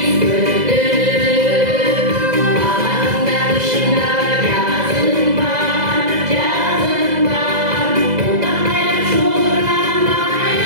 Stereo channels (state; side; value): late; left; 2.0 ms